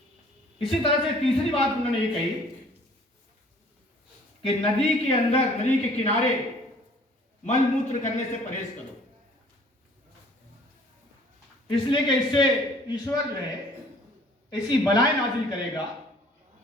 इसी तरह से तीसरी बात उन्होंने ये कही कि नदी के अंदर, नदी के किनारे मल मूत्र करने से परहेज करो, इसलिए कि इससे ईश्वर जो है ऐसी बलाएं नाजिल करेगा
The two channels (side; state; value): both; normal; correlation 0.54